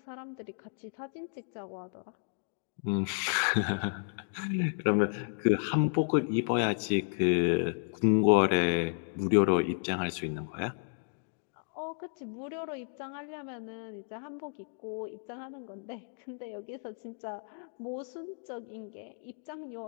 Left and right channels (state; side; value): silent; right; 56 dB below the other